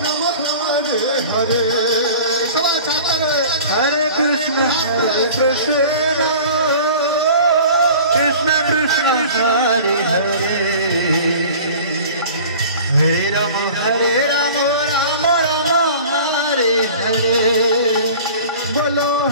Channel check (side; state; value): both; inverted; correlation -0.42